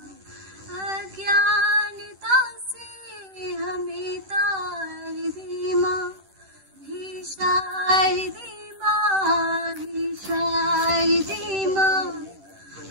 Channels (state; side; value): late; left; 10 ms